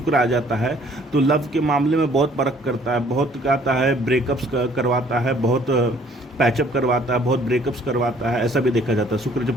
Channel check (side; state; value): both; normal; correlation 0.59